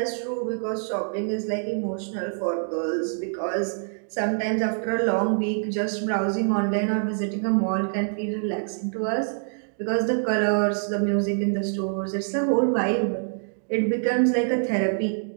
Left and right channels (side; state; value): left; silent; digital silence